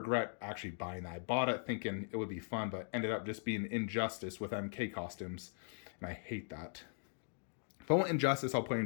actually buying that. I bought it thinking it would be fun, but ended up just being Injustice with MK costumes. And I hate that. If I want Injustice, I'll play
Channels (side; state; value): right; silent; digital silence